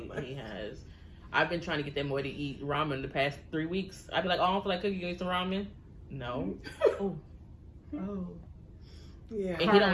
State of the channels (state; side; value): identical; both; correlation 1.00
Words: much." He has. I've been trying to get that boy to eat ramen the past 3 weeks. I'd be like, oh, I don't feel like cooking. You eat some ramen? No. Oh. Oh. Yeah. And he don't